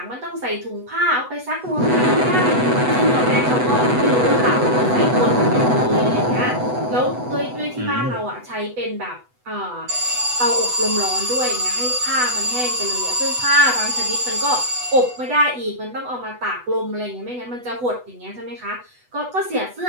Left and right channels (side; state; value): left; late; 8.1 ms